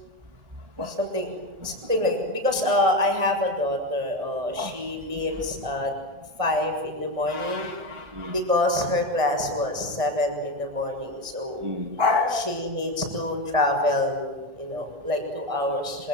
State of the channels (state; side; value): late; left; 1.6 ms